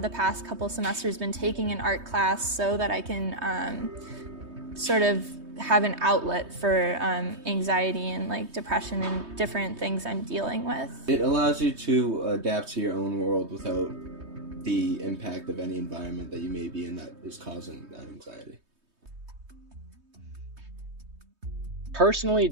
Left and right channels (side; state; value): left; late; 3.2 ms